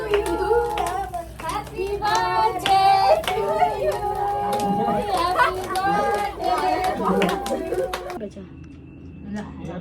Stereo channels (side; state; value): both; identical; correlation 1.00